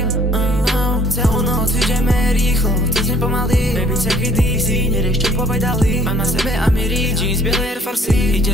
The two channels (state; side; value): normal; both; correlation 0.58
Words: Celú noc ideme rýchlo, cez ne pomaly. Baby, take it easy, nerieš čo povedali. Mám na sebe Amiri, jeans, biele Air Force.